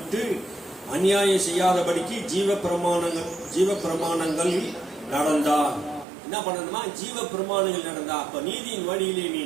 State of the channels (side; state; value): left; drops out; at 6.1 s